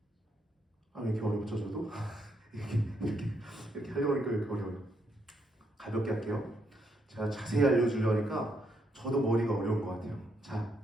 왜 이렇게 어렵죠 저도? 이렇게 하려고 하니까 왜 이렇게 어려워요. 가볍게 할게요. 제가 자세히 알려주려니까 저도 머리가 어려운 것 같아요. 자,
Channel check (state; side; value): normal; both; correlation 0.76